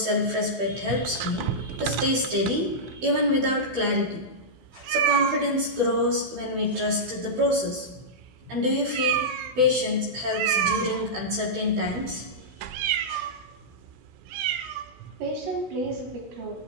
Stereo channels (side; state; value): left; late; 16 ms